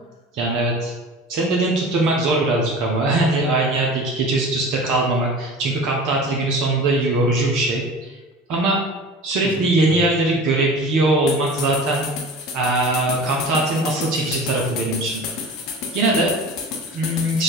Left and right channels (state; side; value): normal; both; correlation 0.38